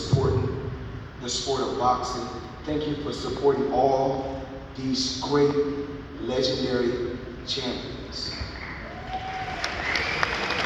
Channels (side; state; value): both; identical; correlation 1.00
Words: the sport of boxing. Thank you for supporting all these great, legendary champions.